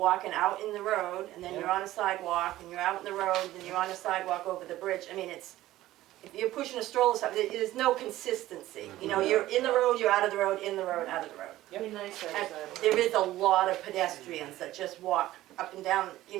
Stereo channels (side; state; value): left; quieter; 15.4 dB